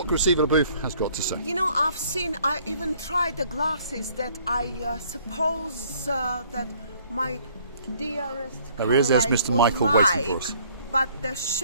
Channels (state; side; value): inverted; both; correlation -0.60